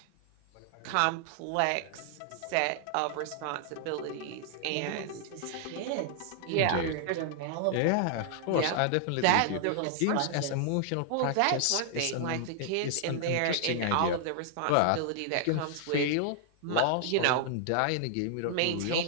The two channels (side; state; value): both; different; correlation 0.00